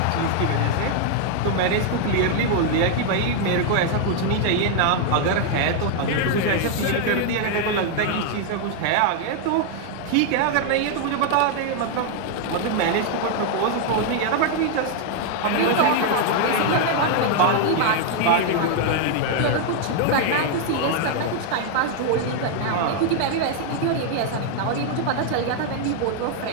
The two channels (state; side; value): different; both; correlation 0.00